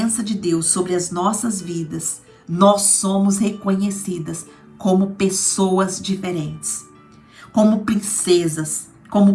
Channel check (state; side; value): identical; both; correlation 1.00